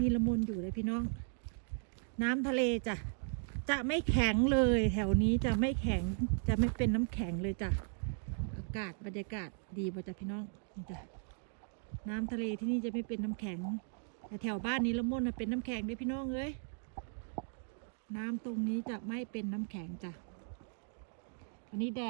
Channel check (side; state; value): left; silent; 53 dB below the other